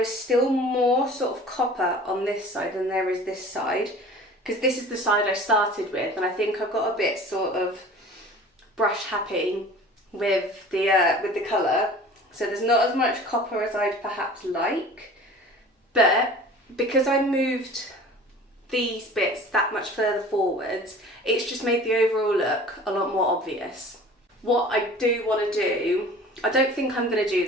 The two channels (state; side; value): normal; both; correlation 0.43